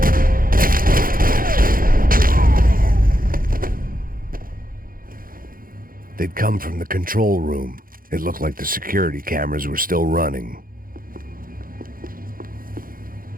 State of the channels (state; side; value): late; left; 0.41 ms